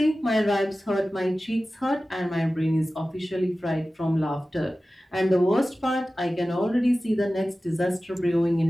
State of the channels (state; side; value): normal; both; correlation 0.96